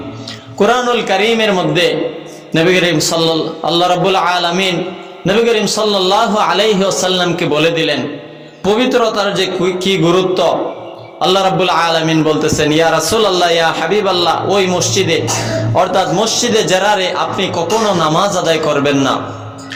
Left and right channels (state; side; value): identical; both; correlation 1.00